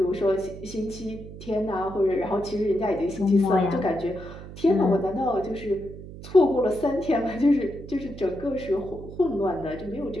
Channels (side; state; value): right; noise; hum, 13 dB below the sound